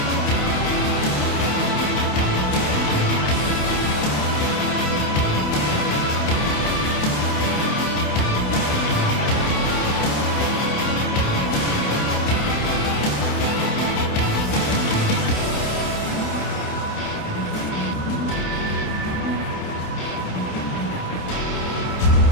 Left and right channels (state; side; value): late; right; 28 ms